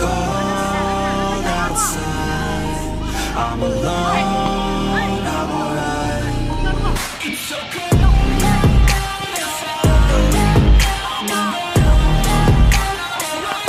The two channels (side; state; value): both; identical; correlation 1.00